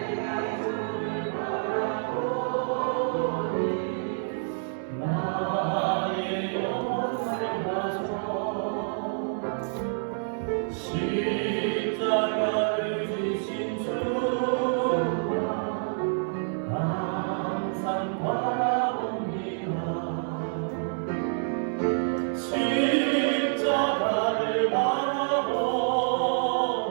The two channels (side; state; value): left; silent; digital silence